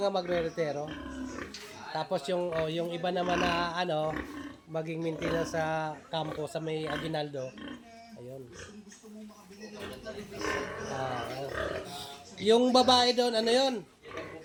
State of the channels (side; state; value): both; identical; correlation 1.00